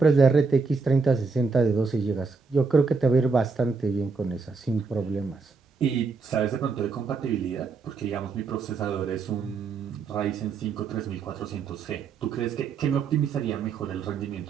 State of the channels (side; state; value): left; quieter; 4.6 dB